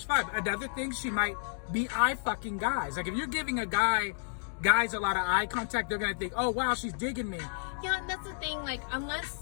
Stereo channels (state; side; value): silent; right; digital silence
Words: vibe. Another thing, she might be eye fucking guys. Like, if you're giving guys a lot of eye contact, they're gonna think, oh wow, she's digging me. Yeah, and that's the thing. Like,